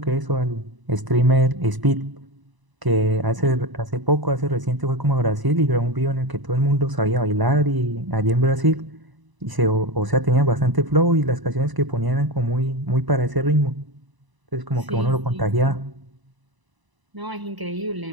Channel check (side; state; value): left; late; 1.0 ms